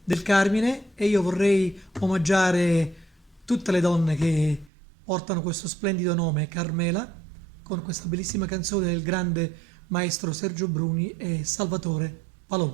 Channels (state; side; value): drops out; left; at 4.7 s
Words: del Carmine e io vorrei omaggiare tutte le donne che portano questo splendido nome, Carmela, con questa bellissima canzone del grande maestro Sergio Bruni e Salvatore